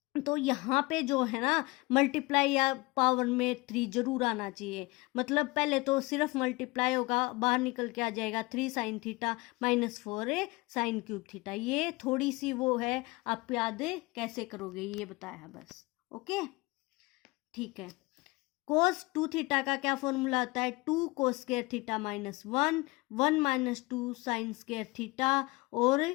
तो यहाँ पे जो है ना मल्टीप्लाई या पावर में 3 जरूर आना चाहिए। मतलब पहले तो सिर्फ मल्टीप्लाई होगा, बाहर निकल के आ जाएगा 3 sine theta minus 4 sine cube theta. ये थोड़ी सी वो है, आप याद कैसे करोगे ये बताया बस। ओके, ठीक है। कोस 2 थीटा का क्या फॉर्मूला आता है? 2 cos square theta minus 1 minus 2 sine square theta और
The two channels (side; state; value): right; quieter; 23.3 dB